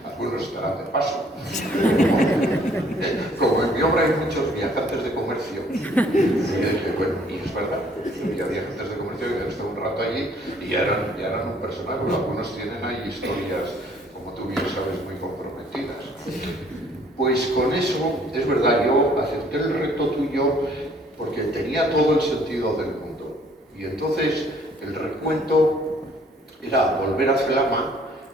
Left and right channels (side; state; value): both; normal; correlation 0.60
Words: algunos estarán de paso. Como en mi obra hay muchos viajantes de comercio, bueno, y es verdad, había viajantes de comercio que han estado un rato allí y ya eran un personaje, pero algunos tienen ahí historias, como tú bien sabes, muy comprometidas. Pues con eso, es verdad, yo acepté el reto tuyo porque tenía todo el sentido del mundo. Y entonces el recuento era volver a Celama,